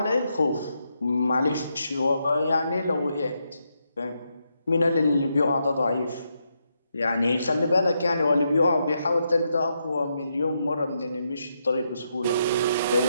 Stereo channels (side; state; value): both; inverted; correlation -0.81